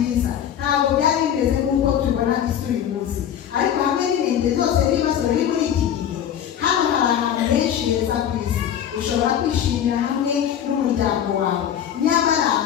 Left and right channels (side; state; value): right; quieter; 9.7 dB